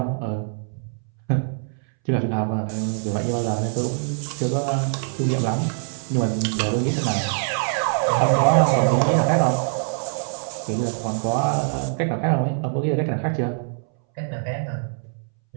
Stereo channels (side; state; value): left; silent; 63 dB below the other